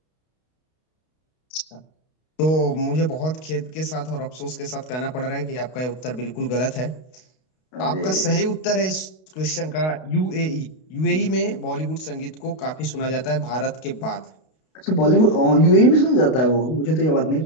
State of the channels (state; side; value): late; right; 32 ms